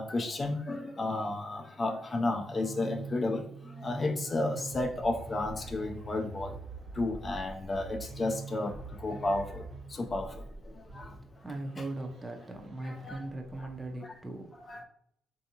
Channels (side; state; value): both; normal; correlation 0.87